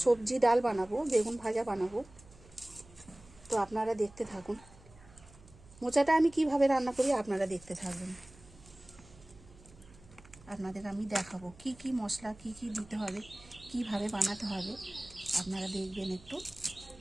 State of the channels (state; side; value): noise; right; hum, 23 dB below the sound